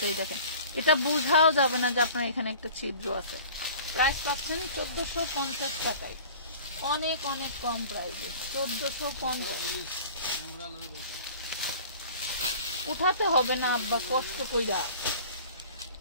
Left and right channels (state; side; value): inverted; both; correlation -0.44